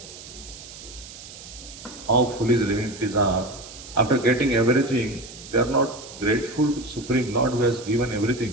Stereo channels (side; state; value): right; noise; hiss, 15 dB below the sound